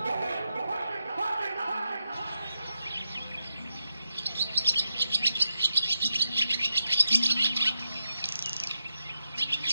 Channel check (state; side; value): inverted; both; correlation -0.85